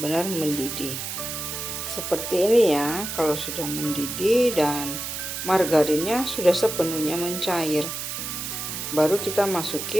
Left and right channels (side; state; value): right; noise; hiss, 5 dB below the sound